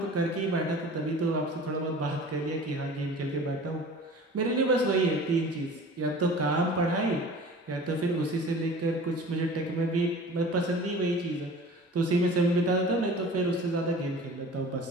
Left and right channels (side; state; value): both; normal; correlation 0.42